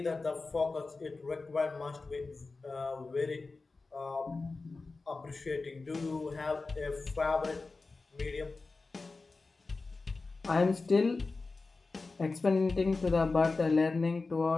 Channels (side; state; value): right; quieter; 3.8 dB